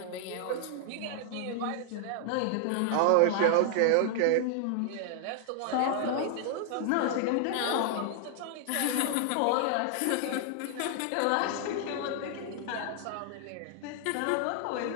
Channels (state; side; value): different; both; correlation 0.00